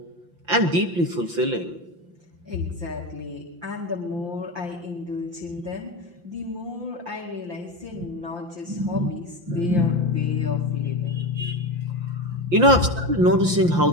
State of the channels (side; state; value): left; late; 5.8 ms